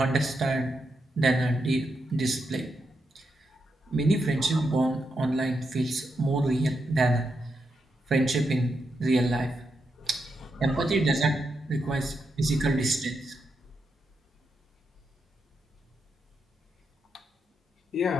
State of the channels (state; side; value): normal; both; correlation 0.84